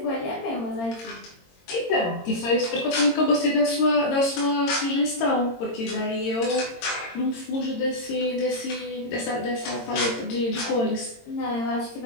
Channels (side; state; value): right; late; 22 ms